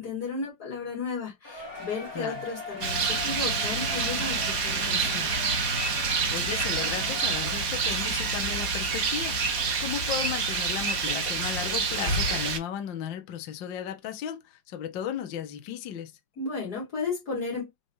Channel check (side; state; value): right; late; 4.9 ms